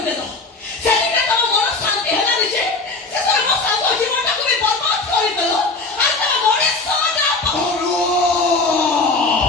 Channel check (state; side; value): quieter; right; 3.6 dB